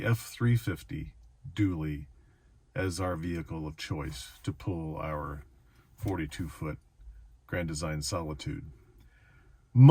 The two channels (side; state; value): both; identical; correlation 1.00